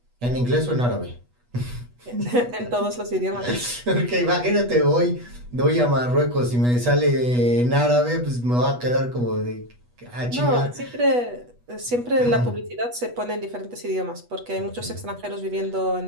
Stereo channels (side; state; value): left; late; 8.2 ms